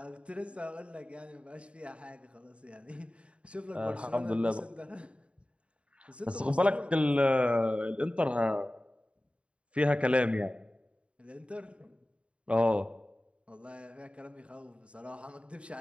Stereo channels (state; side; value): late; left; 0.060 ms